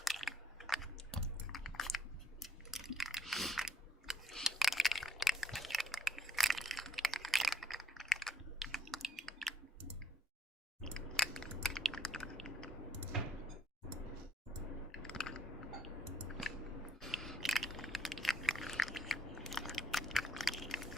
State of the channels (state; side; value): normal; both; correlation 0.69